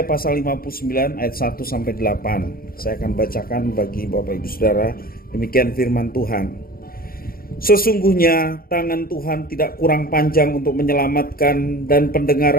pasal 59 ayat 1-8. Saya akan bacakan bagi Bapak Ibu Saudara. Demikian firman Tuhan. Sesungguhnya tangan Tuhan tidak kurang panjang untuk menyelamatkan dan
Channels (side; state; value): right; late; 0.43 ms